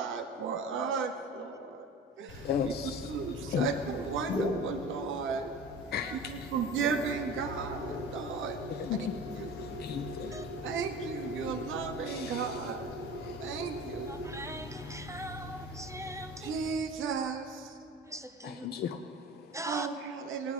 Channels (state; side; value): normal; both; correlation 0.36